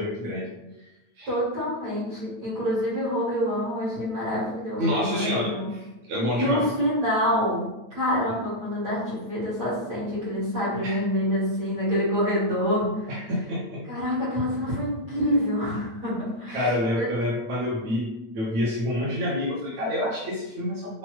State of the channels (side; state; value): left; late; 8.9 ms